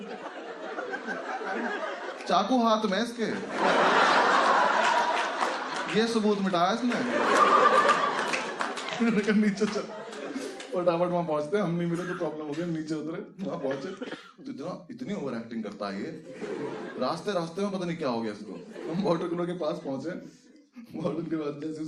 चाकू हाथ में इसके, ये सबूत मिटाया इसने। नीचे चल, फटाफट वहां पहुंचते, हम नहीं मिले तो प्रॉब्लम हो गया। नीचे उतरे, वहां पहुंचे तो इतनी ओवर एक्टिंग करता है ये। रास्ते रास्ते में पता नहीं क्या हो गया इसको। हम वाटर कूलर के पास पहुंचे, वार्डन के बाद जैसे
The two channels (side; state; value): both; identical; correlation 1.00